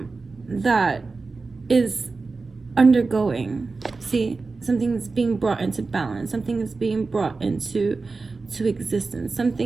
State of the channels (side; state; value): left; quieter; 4.0 dB